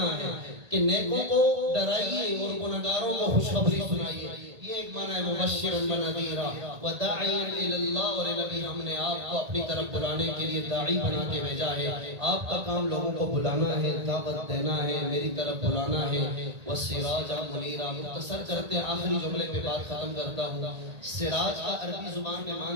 ہے کہ نیکوں کو ڈرائیے اور گناہگاروں کو خوشخبری سنائیے۔ یہ ایک معنی ہے مبشرا ونذیرا وداعیا الی اللہ، اور نبی ہم نے آپ کو اپنی طرف بلانے کے لیے داعی بنا کے بھیجا ہے۔ آپ کا کام لوگوں کو بلانا ہے، دعوت دینا ہے، میری طرف بلانا ہے۔ وسراجا منیرا، مختصر کرتے ہیں آخری جملے پہ بات ختم کرتا ہوں۔ سراج کا عربی زبان میں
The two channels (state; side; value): late; left; 1.8 ms